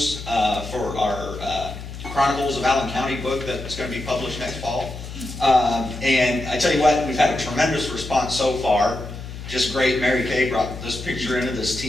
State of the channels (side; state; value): left; noise; hum, 11 dB below the sound